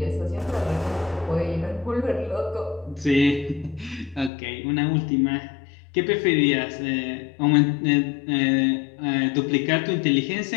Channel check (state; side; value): drops out; right; at 4.3 s